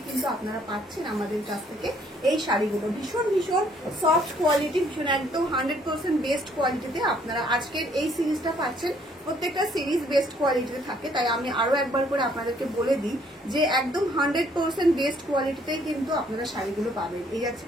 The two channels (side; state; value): both; normal; correlation 0.64